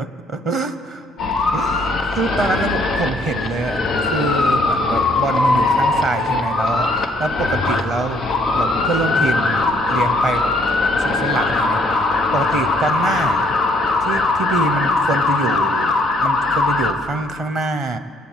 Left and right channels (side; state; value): both; normal; correlation 0.65